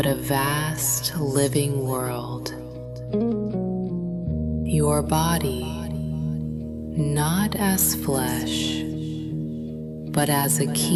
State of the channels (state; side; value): identical; both; correlation 1.00